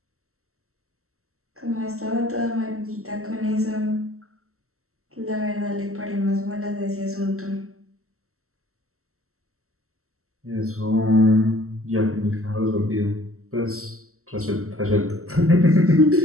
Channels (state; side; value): late; left; 0.63 ms